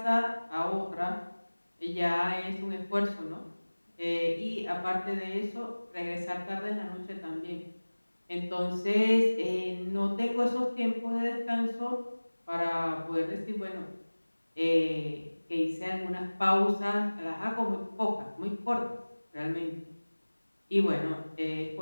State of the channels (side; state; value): both; inverted; correlation -1.00